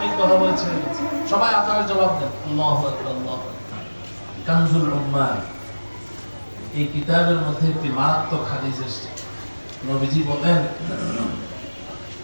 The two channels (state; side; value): inverted; both; correlation -1.00